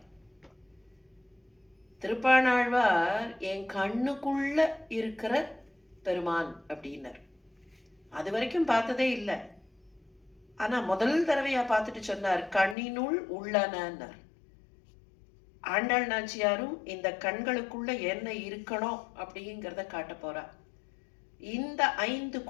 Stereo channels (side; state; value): right; drops out; at 12.8 s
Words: திருப்பாணாழ்வார் என் கண்ணுக்குள்ள இருக்கிற பெருமான் அப்படின்னர். அது வரைக்கும் பார்த்ததே இல்லை. ஆனா முதல் தடவையா பார்த்துட்டு சொன்னார், கண்ணினுள் உள்ளனர். ஆண்டாள் நாச்சியாரும் இந்த கண்களுக்குள்ள என்ன இருக்கணும் அப்படிங்கிறத காட்ட போறா. இந்த 5